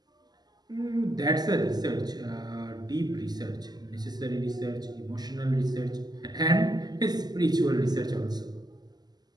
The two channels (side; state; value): left; late; 0.20 ms